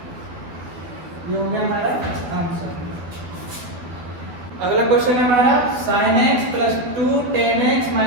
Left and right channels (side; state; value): left; late; 12 ms